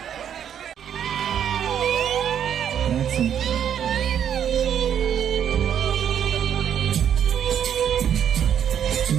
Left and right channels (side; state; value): left; quieter; 9.0 dB